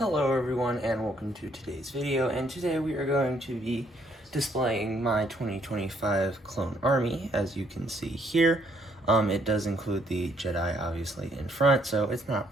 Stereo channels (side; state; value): both; normal; correlation 0.68